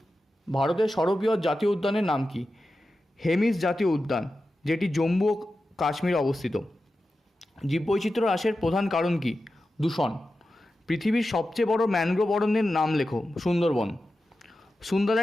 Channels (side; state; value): both; normal; correlation 0.92